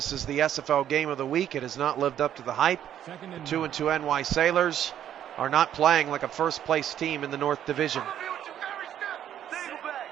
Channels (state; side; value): quieter; left; 10.5 dB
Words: is the SFL game of the week. It has not lived up to the hype. 2-2 NY Sailors are not playing like a first-place team in the North Division.